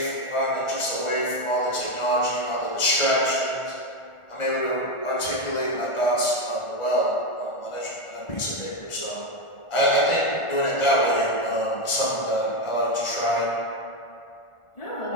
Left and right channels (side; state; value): right; late; 1.4 ms